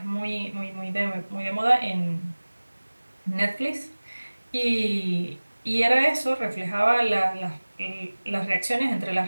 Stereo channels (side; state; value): both; inverted; correlation -1.00